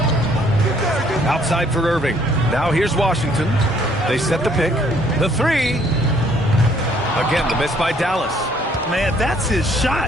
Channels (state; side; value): normal; both; correlation 0.63